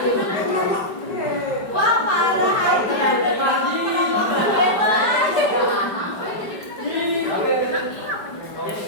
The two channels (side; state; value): right; late; 5.1 ms